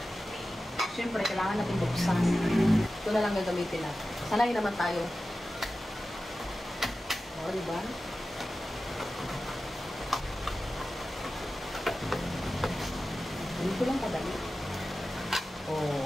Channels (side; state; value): both; normal; correlation 0.94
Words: Siyempre, kailangan natin buksan. Ito na lang gagamitin natin. Sanay naman tayo. O, diba? Dito lang kadali. O,